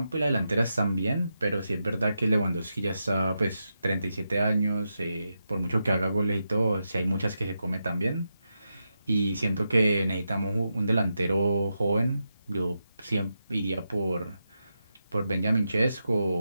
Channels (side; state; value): both; inverted; correlation -0.87